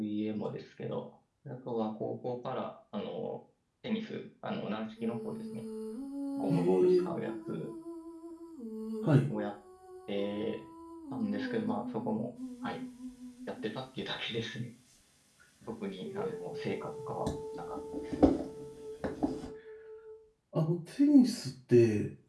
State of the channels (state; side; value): identical; both; correlation 1.00